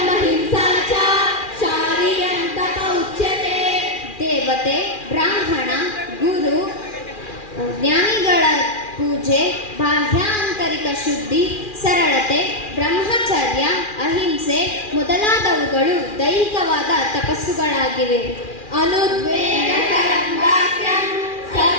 ಅಹಿಂಸಾ ಚ ಶಾರೀರಂ ತಪ ಉಚ್ಯತೆ. ದೇವತೆ, ಬ್ರಾಹ್ಮಣ, ಗುರು, ಜ್ಞಾನಿಗಳ ಪೂಜೆ, ಬಾಹ್ಯ ಆಂತರಿಕ ಶುದ್ಧಿ, ಸರಳತೆ, ಬ್ರಹ್ಮಚರ್ಯ, ಅಹಿಂಸೆ ಮೊದಲಾದವುಗಳು ದೈಹಿಕವಾದ ತಪಸ್ಸುಗಳಾಗಿವೆ. ಅನುದ್ವೇಗಕರಂ ವಾಕ್ಯಂ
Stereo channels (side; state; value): right; late; 2.4 ms